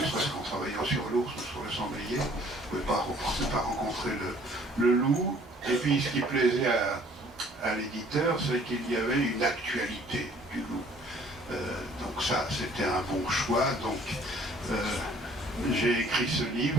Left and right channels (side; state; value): both; normal; correlation 0.56